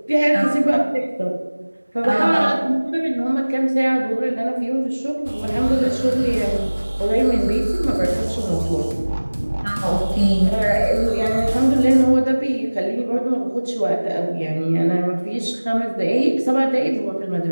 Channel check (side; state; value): both; inverted; correlation -1.00